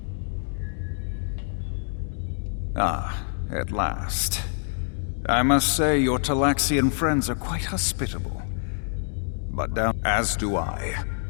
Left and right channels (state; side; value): silent; right; digital silence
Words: Ah, at last. I must say your Talaxian friends are quite hospitable. But down as do I.